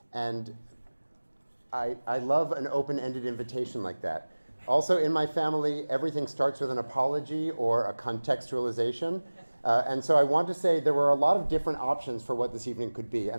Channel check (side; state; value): both; inverted; correlation -1.00